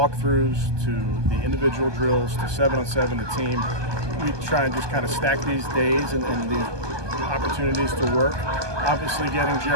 to the individual drills to 7-on-7 the team. We try and just kind of stack these days and these opportunities to work. Obviously, getting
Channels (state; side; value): late; left; 1.2 ms